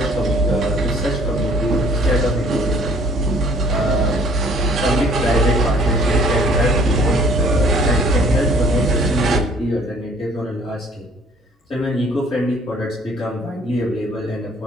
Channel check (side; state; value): both; normal; correlation 0.56